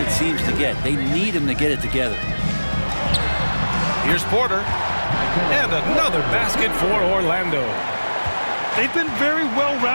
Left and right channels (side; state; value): both; inverted; correlation -1.00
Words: it seems to get. They need him to get it together. Here's Porter. And another basket for Orlando. They've been very